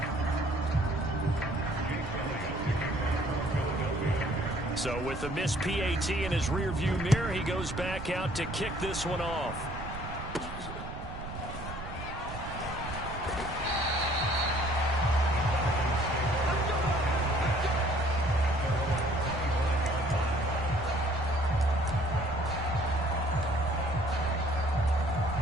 So with the missed PAT in his rearview mirror, he goes back out to kick this one off.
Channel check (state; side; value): noise; right; rumble, 10 dB below the sound